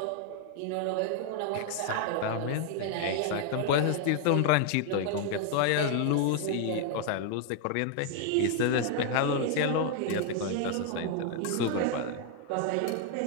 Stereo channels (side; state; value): both; different; correlation 0.00